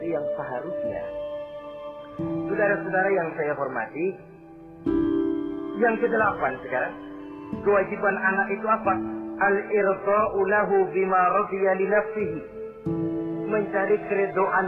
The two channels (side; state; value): both; identical; correlation 1.00